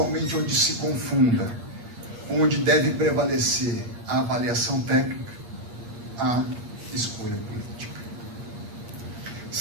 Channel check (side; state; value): left; late; 8.5 ms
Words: onde se confunda, onde deve prevalecer a avaliação técnica, a escolha política.